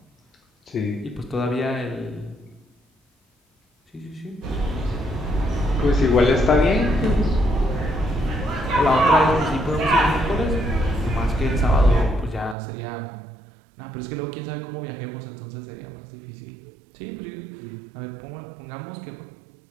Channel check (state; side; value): drops out; left; at 12.6 s